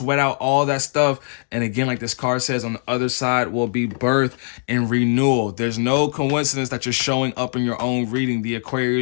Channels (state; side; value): silent; right; digital silence